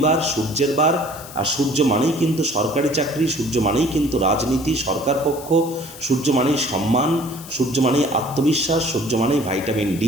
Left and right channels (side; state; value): left; noise; hiss, 16 dB below the sound